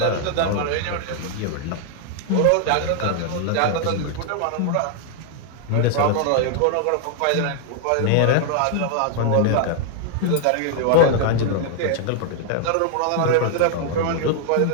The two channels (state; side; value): different; both; correlation 0.00